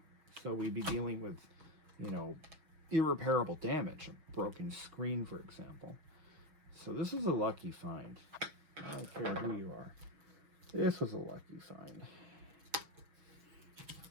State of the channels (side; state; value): left; late; 6.3 ms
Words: So we'd be dealing with, irreparable damage, a broken screen, for example. So this is a lucky find. I don't care who you are. This was a lucky find.